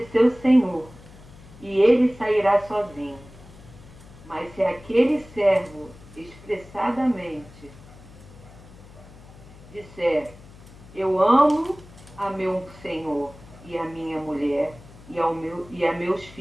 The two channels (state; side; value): noise; left; hum, 20 dB below the sound